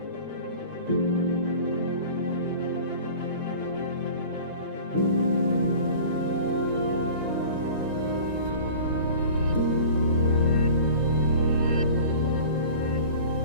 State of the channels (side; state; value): both; inverted; correlation -0.42